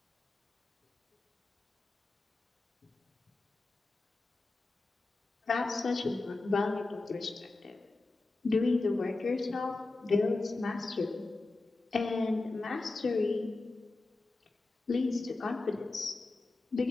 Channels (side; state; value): right; quieter; 3.3 dB